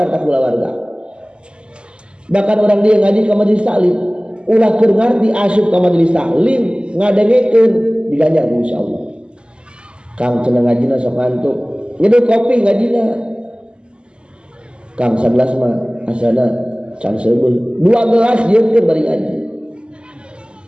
kulawarga. Bahkan orang dia ngaji ke majelis taklim, ulah keur ngarti asup ka majelis taklim, ngadengekeun diganjar ku Insya Allah. Kang cenah ngajina sok ngantuk, nyeduh kopi ngajina. Kang sagelas mah asana can seubeul, 2 gelas nyieunkeun bari ngaji.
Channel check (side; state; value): left; late; 0.050 ms